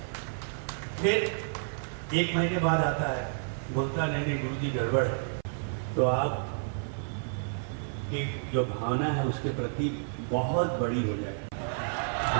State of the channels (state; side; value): silent; left; 56 dB below the other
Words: फिर 1 महीने बाद आता है, बोलता नहीं गुरुजी गड़बड़ है। तो आप की जो भावना है उसके प्रति बहुत बड़ी हो जाए।